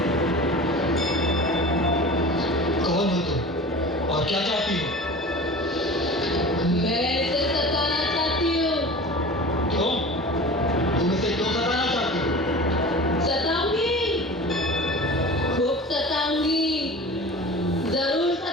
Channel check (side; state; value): both; normal; correlation 0.37